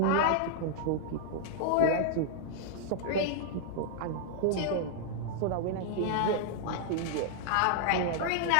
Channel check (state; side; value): different; both; correlation -0.01